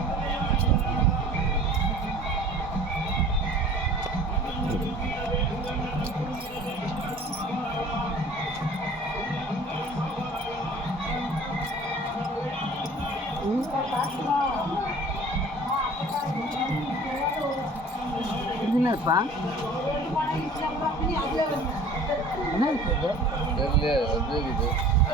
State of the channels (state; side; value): normal; both; correlation 0.46